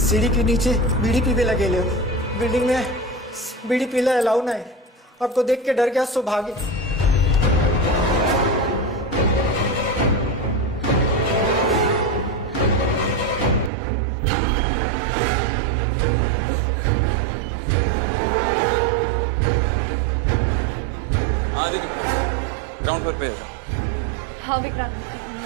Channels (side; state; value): left; drops out; at 13.7 s